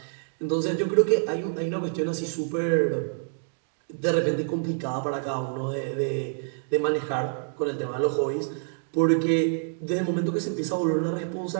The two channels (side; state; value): left; silent; digital silence